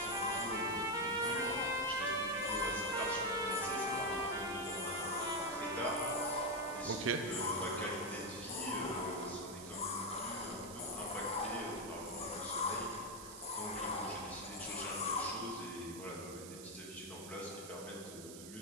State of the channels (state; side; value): noise; right; hiss, 12 dB below the sound